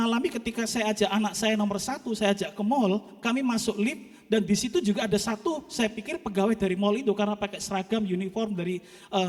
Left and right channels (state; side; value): identical; both; correlation 1.00